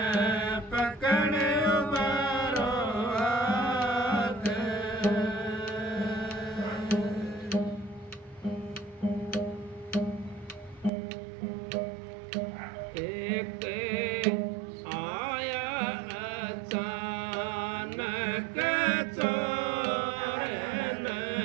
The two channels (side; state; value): left; drops out; at 10.9 s